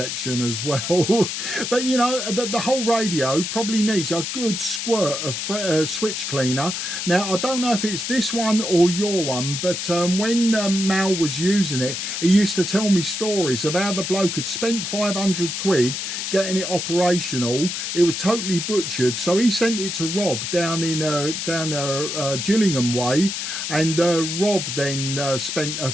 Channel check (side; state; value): left; noise; hiss, 4 dB below the sound